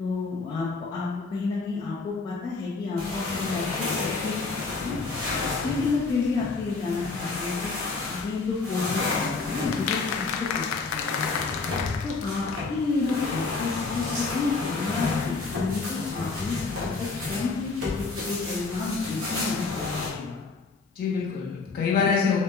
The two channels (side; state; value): right; quieter; 4.1 dB